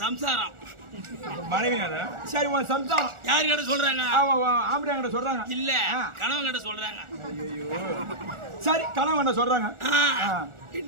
சம்சாரம் மனைவி சரி உன் சம்சாரம் யாரு கிட்ட சொல்றாங்க ஆம்படியா கிட்ட சொல்றாங்க இல்ல கணவன் கிட்ட சொல்றாங்க சரி கணவன் சொல்றாங்க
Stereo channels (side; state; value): left; late; 1.4 ms